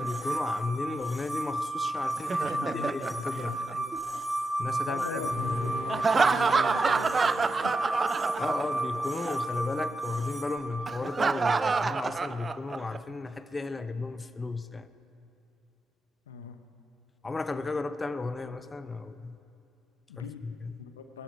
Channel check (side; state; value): both; normal; correlation 0.88